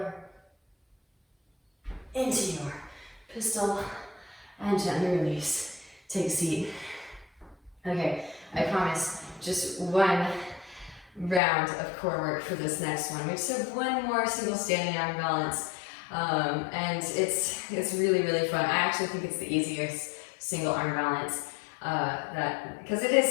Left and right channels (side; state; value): right; drops out; at 11.4 s